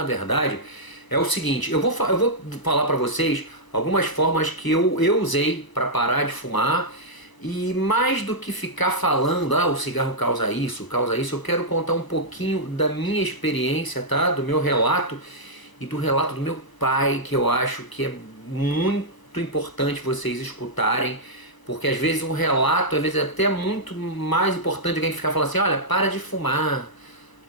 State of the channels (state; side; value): late; right; 1.0 ms